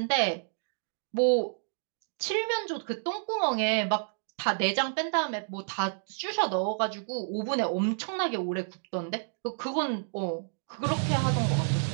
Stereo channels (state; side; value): silent; left; digital silence